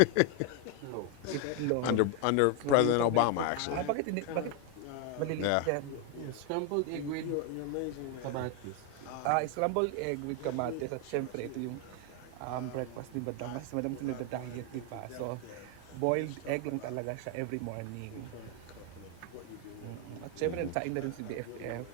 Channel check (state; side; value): different; both; correlation 0.01